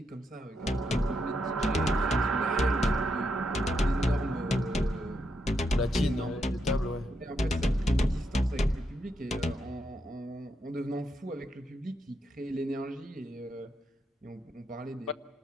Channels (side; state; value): both; normal; correlation 0.81